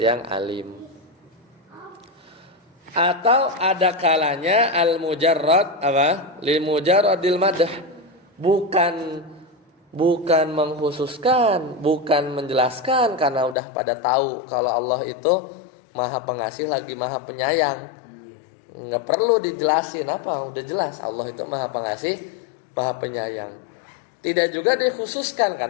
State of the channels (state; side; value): drops out; right; at 13.6 s